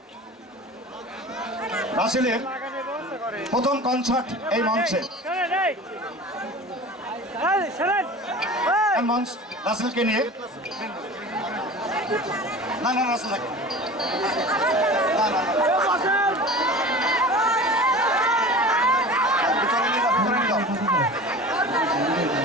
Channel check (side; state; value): both; normal; correlation 0.37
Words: রাসেলের প্রথম কনসার্ট এই মঞ্চে মঞ্চ রাসেলকে নিয়ে না রাসেল